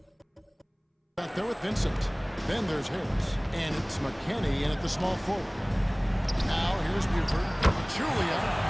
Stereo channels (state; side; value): identical; both; correlation 1.00